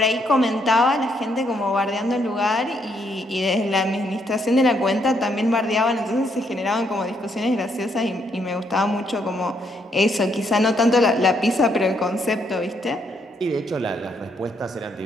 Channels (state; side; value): normal; both; correlation 0.73